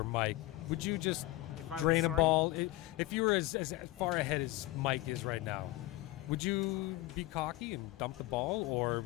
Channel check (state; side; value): quieter; right; 18.0 dB